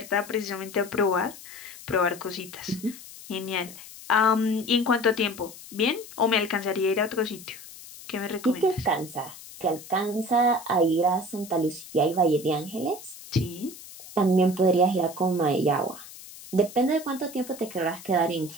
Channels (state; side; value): noise; left; hiss, 16 dB below the sound